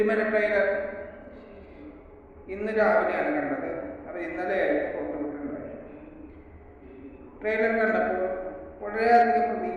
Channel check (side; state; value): both; identical; correlation 1.00